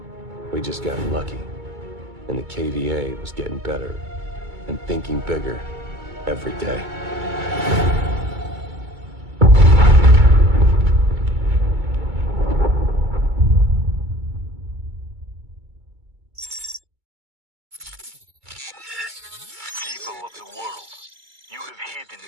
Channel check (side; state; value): left; late; 2.2 ms